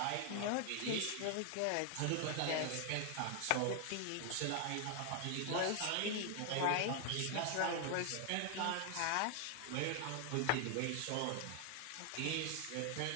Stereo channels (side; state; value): both; different; correlation 0.00